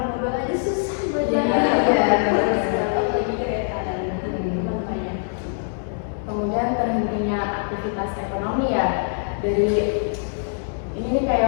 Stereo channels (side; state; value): right; silent; 63 dB below the other